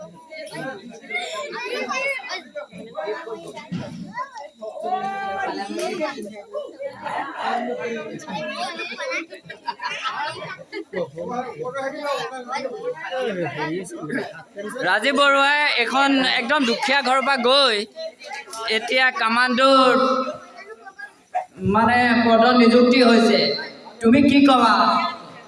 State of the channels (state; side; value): identical; both; correlation 1.00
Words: ৰাজীৱ বৰুৱাই এখন একদম দুখীয়া ঘৰৰ পৰা গৈ এতিয়া কামাণ্ডোৰ মানে পদত নিযুক্তি হৈছে। তুমি কি ক'বা